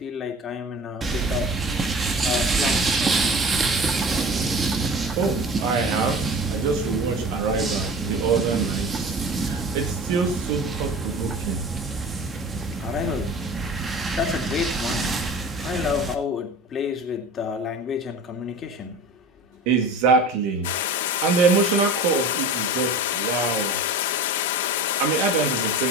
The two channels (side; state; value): both; normal; correlation 0.37